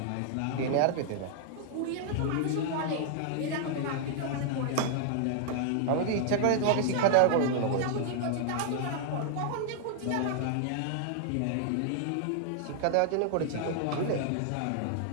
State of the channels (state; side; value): different; both; correlation -0.01